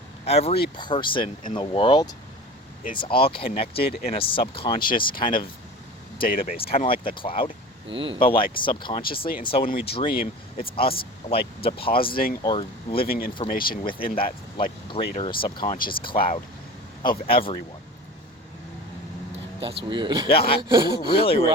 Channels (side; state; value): both; normal; correlation 0.35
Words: every person in the world is all connected in a subconscious kind of database, kind of like the cloud, but like subconsciously. And so when we dream, it's us like depositing or living information within that like greater subconscious cloud of everyone. That's weird. Yeah, really weird.